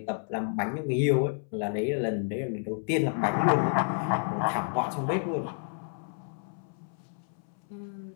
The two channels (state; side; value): silent; right; 58 dB below the other